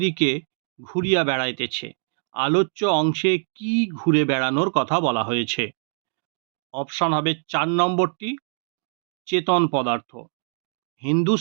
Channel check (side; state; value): left; silent; digital silence